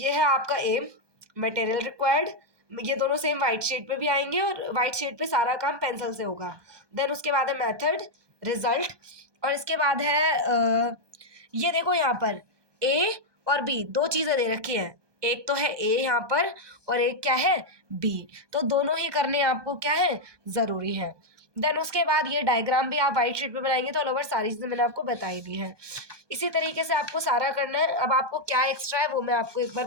है आपका एम, मटेरियल रिक्वायर्ड, ये दोनों सेम वाइट शीट पे भी आएंगे और वाइट शीट पे सारा काम पेंसिल से होगा। देन उसके बाद है मेथड, रिजल्ट और इसके बाद है ये देखो यहाँ पर ए और बी, दो चीजें दे रखी हैं, एक तो है ए यहाँ पर और एक क्या है बी, तो दोनों ही करने आपको क्या है जरूरी है। देन उसके बाद ये डायग्राम भी आप व्हाइट शीट पे बनाएंगे तो ऑल ओवर सारी चीजें मैंने आपको बताई दी है। इसी तरीके से आपको सारा करना है। अब आपको क्या एक्स्ट्रा है वो मैं आपको एक बार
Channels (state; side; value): late; left; 1.2 ms